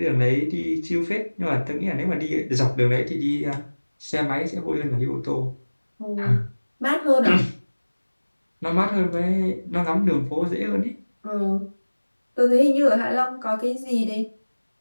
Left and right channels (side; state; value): both; inverted; correlation -1.00